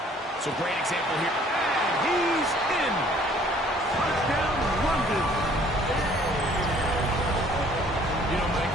so great example here. And he's in. Touchdown, London. You know, Mike,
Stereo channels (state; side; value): normal; both; correlation 0.57